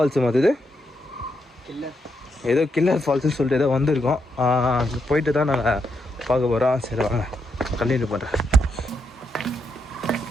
மாதிரி ஏதோ கில்லர் ஃபால்ஸுன்னு சொல்லிட்டு ஏதோ வந்திருக்கோம். போயிட்டு தான் நாங்கள் பார்க்க போகிறோம். சரி வாங்க கண்டினியூ பண்ணுறேன்.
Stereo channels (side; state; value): both; normal; correlation 0.81